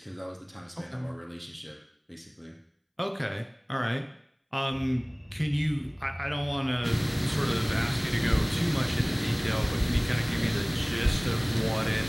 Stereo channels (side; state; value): both; identical; correlation 1.00